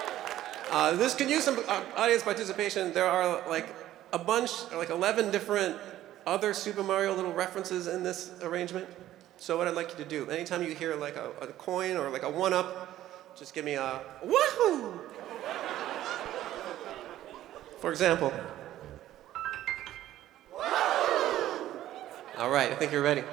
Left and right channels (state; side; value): quieter; left; 13.5 dB